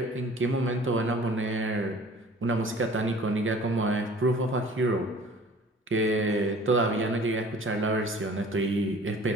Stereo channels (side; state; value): both; normal; correlation 0.48